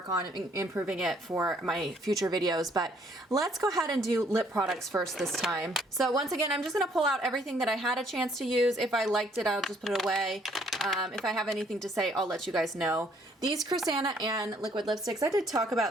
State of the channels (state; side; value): normal; both; correlation 0.64